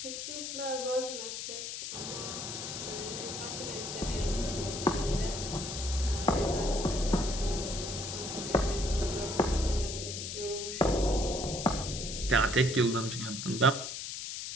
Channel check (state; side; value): noise; left; hiss, 6 dB below the sound